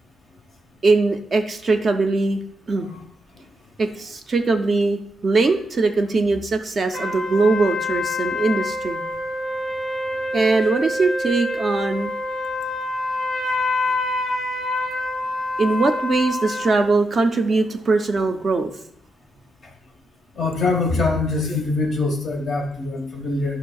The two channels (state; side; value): normal; both; correlation 0.83